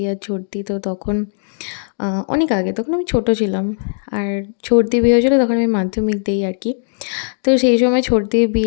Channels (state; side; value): silent; right; digital silence